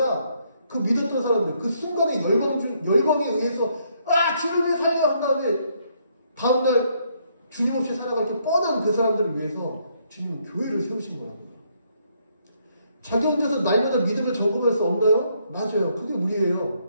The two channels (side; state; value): both; inverted; correlation -0.71